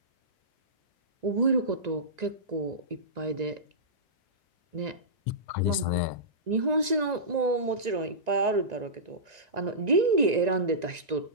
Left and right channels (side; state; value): left; late; 1.9 ms